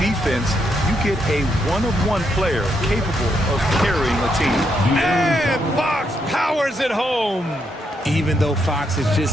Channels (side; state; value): both; normal; correlation 0.78